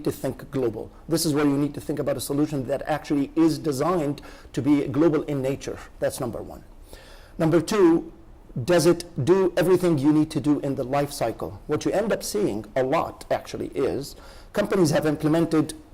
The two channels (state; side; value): identical; both; correlation 1.00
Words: to think global. This is where you need to think about a solution that actually is designed to be global in nature. That's number one. Number two, does it do everything you need to do in the life cycle? What you end up seeing a lot actually is companies have implemented